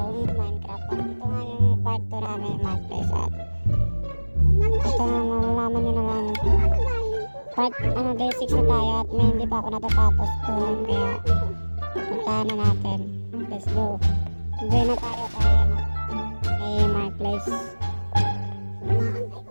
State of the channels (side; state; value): both; inverted; correlation -1.00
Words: Minecraft. At ito nga yung part 2 namin Marketplace at ito nga malalaman nyo naman part day 6 na tayo at may hindi pa ako natatapos doon kaya puntahan na natin. Let's go. Enjoy na tayo kay Marketplace.